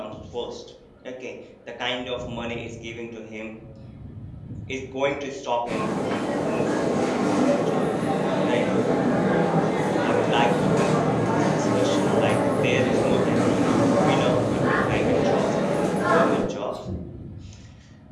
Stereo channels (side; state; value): both; identical; correlation 1.00